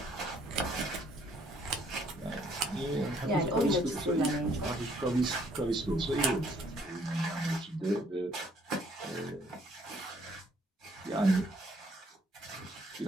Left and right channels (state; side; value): normal; both; correlation 0.64